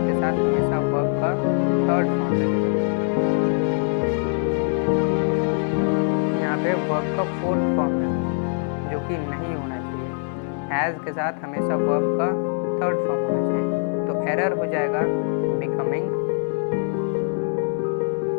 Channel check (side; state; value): right; silent; 63 dB below the other